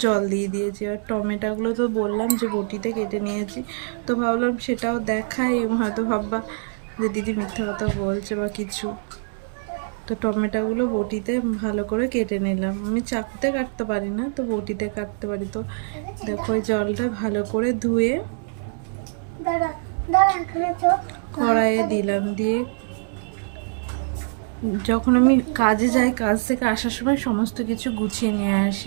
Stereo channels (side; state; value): left; silent; digital silence